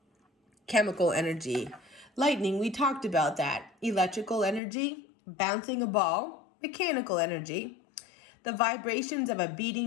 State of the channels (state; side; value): drops out; right; at 4.6 s